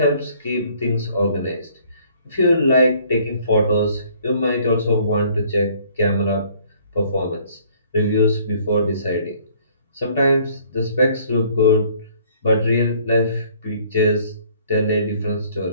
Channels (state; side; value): inverted; both; correlation -0.59